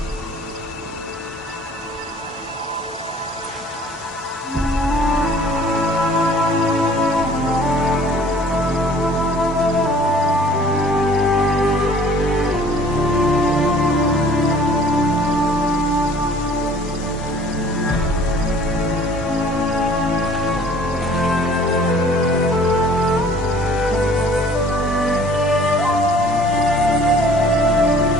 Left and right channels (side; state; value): both; normal; correlation 0.51